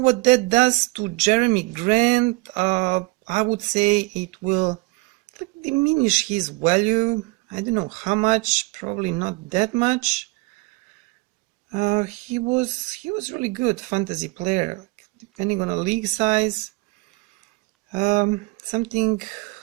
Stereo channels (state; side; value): quieter; left; 25.3 dB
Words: that does to Jeremy Grant. I would say it will diminish his value. I don't know how much, probably not that much. He was really good fantasy player, depending on a league size. Some